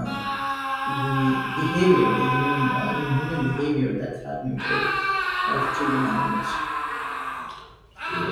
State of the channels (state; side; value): identical; both; correlation 1.00